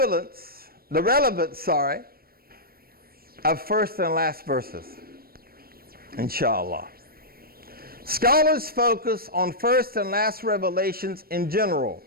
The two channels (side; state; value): left; late; 0.44 ms